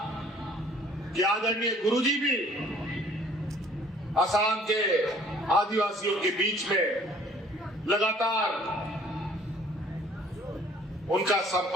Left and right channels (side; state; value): both; normal; correlation 0.56